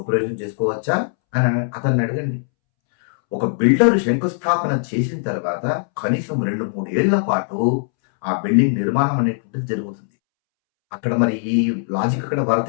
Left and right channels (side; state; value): right; silent; 66 dB below the other